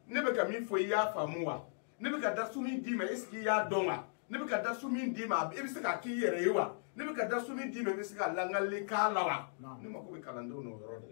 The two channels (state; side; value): silent; right; digital silence